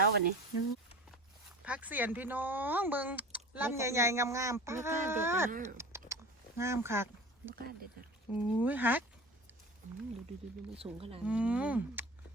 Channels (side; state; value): both; normal; correlation 0.36